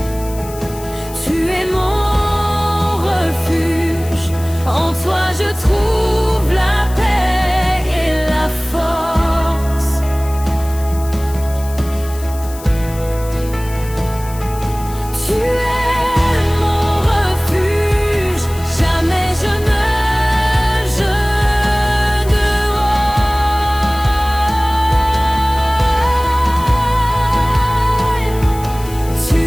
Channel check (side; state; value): left; noise; hiss, 17 dB below the sound